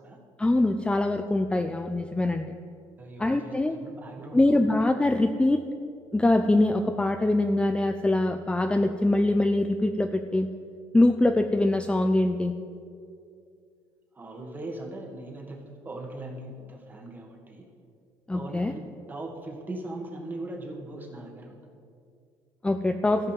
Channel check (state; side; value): normal; both; correlation 0.95